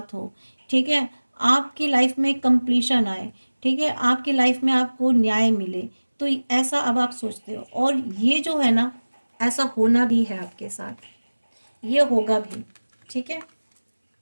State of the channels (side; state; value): both; inverted; correlation -1.00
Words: हो, ठीक है, आपकी लाइफ में कंप्लीशन आए, ठीक है, आपकी लाइफ में आपको न्याय मिले, तो ऐसा अब आप सोचते हो, और ये जो है ना ऐसा होना भी है आपके साथ, ये होगा भी, ठीक है,